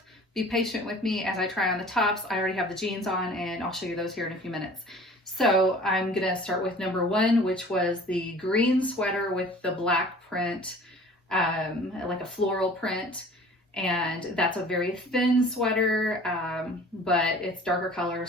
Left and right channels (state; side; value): normal; both; correlation 0.47